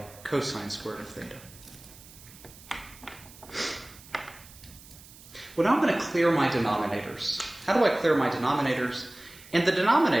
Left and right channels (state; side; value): noise; right; hiss, 20 dB below the sound